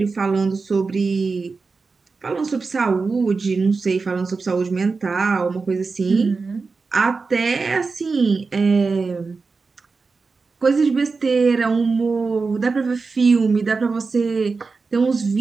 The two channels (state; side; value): quieter; left; 4.4 dB